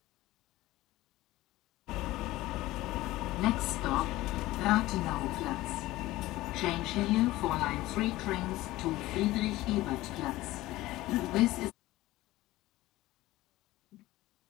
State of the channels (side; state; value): right; quieter; 17.4 dB